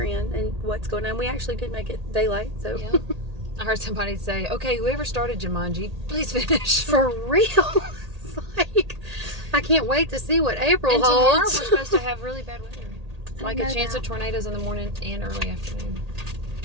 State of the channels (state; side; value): late; left; 1.8 ms